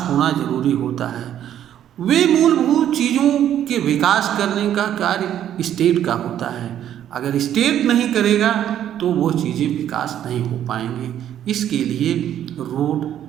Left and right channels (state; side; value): quieter; left; 10.7 dB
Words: होना जरूरी होता है। वे मूलभूत चीज़ों के विकास करने का कार्य स्टेट का होता है। अगर स्टेट नहीं करेगा तो वो चीज़ें विकास नहीं हो पाएंगे। इसके लिए रोड,